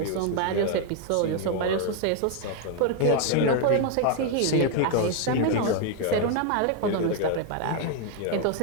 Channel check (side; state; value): both; different; correlation 0.01